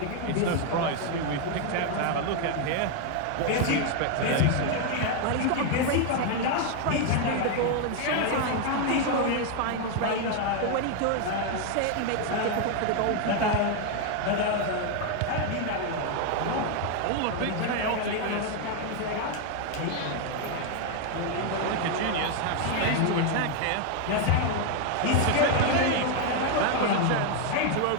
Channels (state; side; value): different; both; correlation 0.01